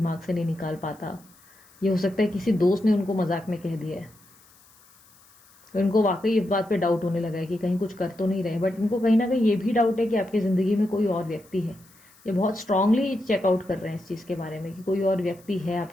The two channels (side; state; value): left; noise; hiss, 28 dB below the sound